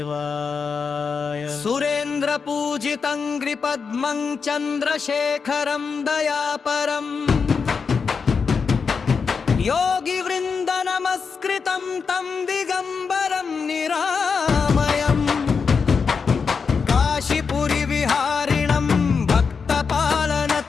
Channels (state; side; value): quieter; right; 5.5 dB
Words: సురేంద్ర పూజితం గ్రిపద్మం చంద్రశేఖరం దయాపరం యోగి వృంద నమస్కృతం తం దిగంబరం నిరామయం కాశీపురి విహారిణం